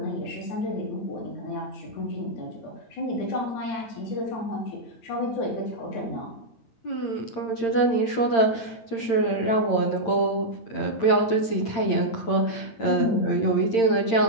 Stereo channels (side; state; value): right; late; 8.8 ms